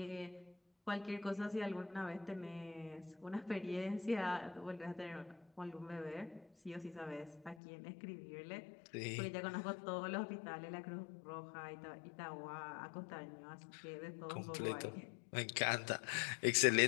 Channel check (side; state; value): right; drops out; at 7.6 s